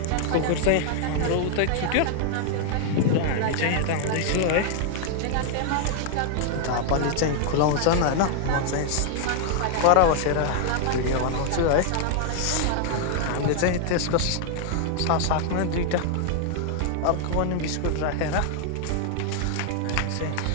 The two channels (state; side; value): different; both; correlation 0.00